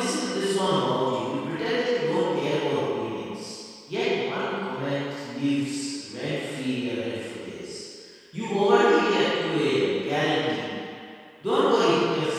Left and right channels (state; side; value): identical; both; correlation 1.00